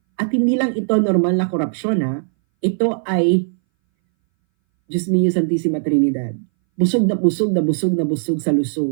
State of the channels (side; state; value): left; silent; 62 dB below the other